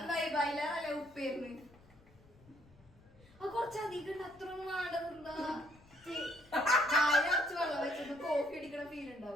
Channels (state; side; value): noise; left; rumble, 26 dB below the sound